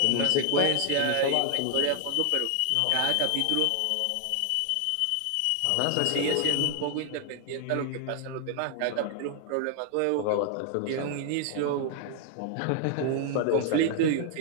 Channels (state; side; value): different; both; correlation 0.00